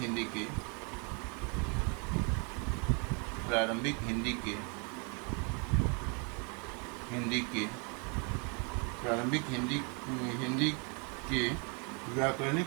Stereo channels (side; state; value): left; quieter; 35.5 dB